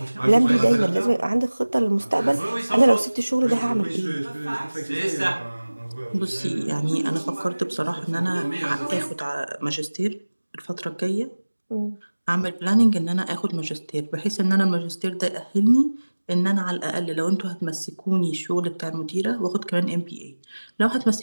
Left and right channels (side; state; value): both; inverted; correlation -1.00